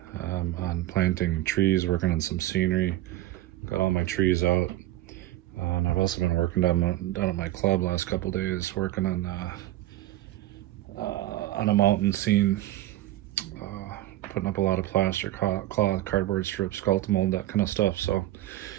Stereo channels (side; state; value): left; quieter; 15.3 dB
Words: on planting trees, working on some scenery. Got all my trees out. And I've also been working down at my club last couple days, working on a mountain scene, putting up a lot of plaster, cloth, cardboard strips, skeleton mold, that kind of stuff. So